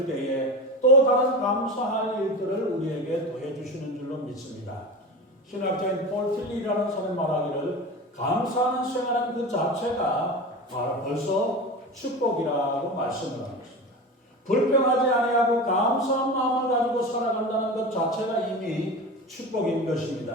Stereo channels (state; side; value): normal; both; correlation 0.28